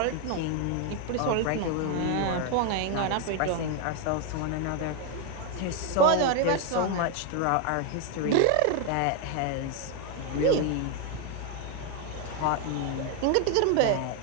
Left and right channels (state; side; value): different; both; correlation 0.01